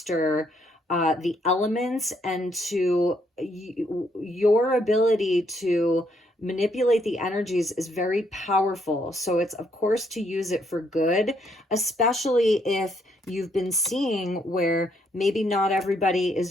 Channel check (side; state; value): both; normal; correlation 0.72